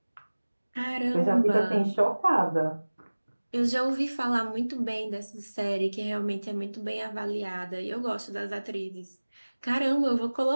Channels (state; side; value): inverted; both; correlation -1.00